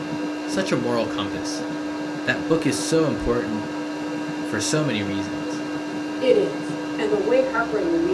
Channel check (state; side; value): identical; both; correlation 1.00